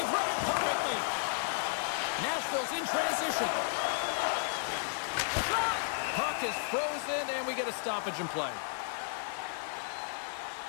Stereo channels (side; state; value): right; silent; digital silence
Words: running perfectly. Nashville's in transition. Shot! Puck is frozen, and we get a stoppage in play.